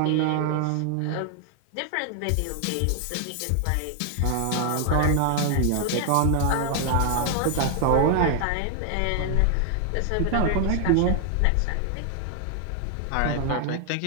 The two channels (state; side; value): different; both; correlation 0.00